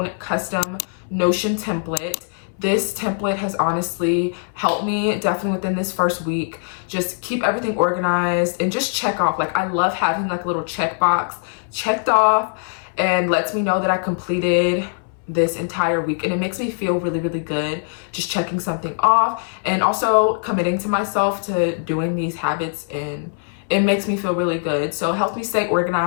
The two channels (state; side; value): silent; right; 63 dB below the other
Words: custom Notion template. This template has honestly helped me definitely within this first week, just keep everything organized and just check off. Like, I love having like a little checkbox checked off, and lets me know that I completed this entire week, and it makes me feel really good just checking something off, and also committing to myself to doing these habits, and it makes me feel really good. So it helps me stay